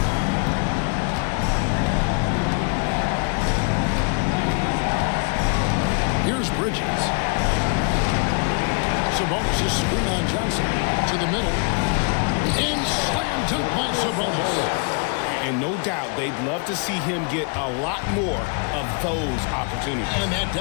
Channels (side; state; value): right; quieter; 37.8 dB